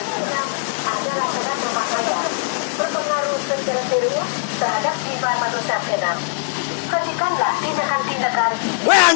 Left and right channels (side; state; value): right; silent; 65 dB below the other